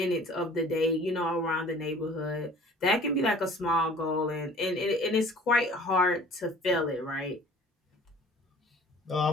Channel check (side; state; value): both; normal; correlation 0.49